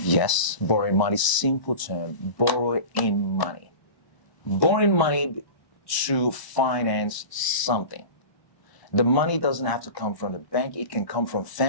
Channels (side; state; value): right; late; 1.0 ms